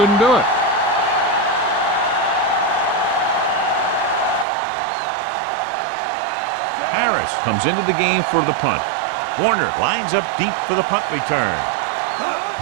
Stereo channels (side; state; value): left; drops out; at 4.5 s